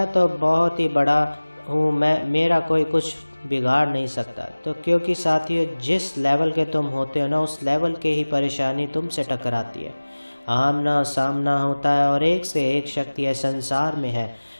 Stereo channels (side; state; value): both; inverted; correlation -1.00